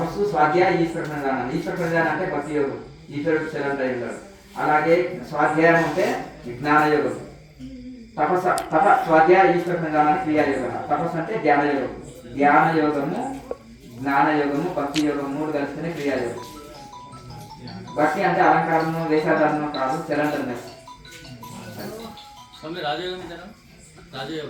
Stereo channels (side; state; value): both; identical; correlation 1.00